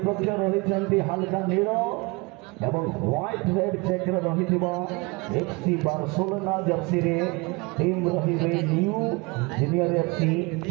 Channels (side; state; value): left; quieter; 26.4 dB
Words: रही हल्का नील एवं व्हाइट रेड चेक रही FC बार्सिलोना जर्सी रे टीम रही न्यू जूनियर FC